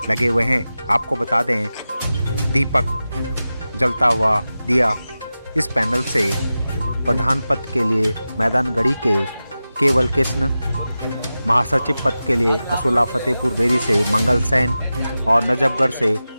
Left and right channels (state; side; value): inverted; both; correlation -0.94